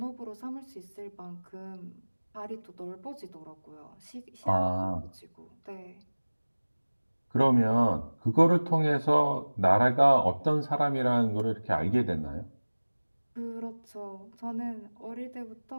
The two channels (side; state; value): both; inverted; correlation -1.00